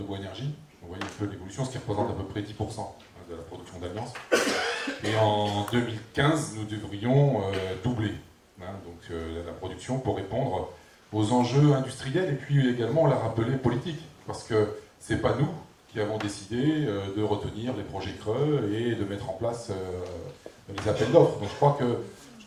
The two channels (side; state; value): both; identical; correlation 1.00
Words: bois énergie. Vous voyez un peu l'évolution, ce qui représente à peu près 10% de la production d'Alliance. Et en 2015, nous devrions doubler la production pour répondre aux enjeux industriels et puis également, on l'a rappelé, politiques. Parce que ce n'est pas nous qui avons décidé de retenir les projets creux et de mettre en place les appels d'offres. Donc je crois